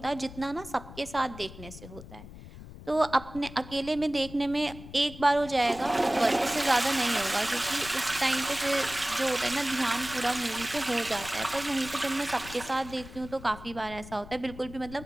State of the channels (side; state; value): left; noise; rumble, 15 dB below the sound